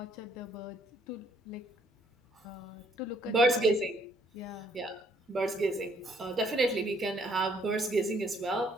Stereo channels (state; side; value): normal; both; correlation 0.66